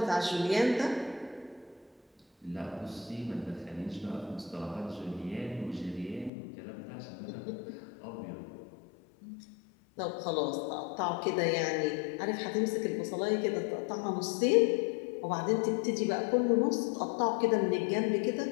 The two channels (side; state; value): right; drops out; at 6.3 s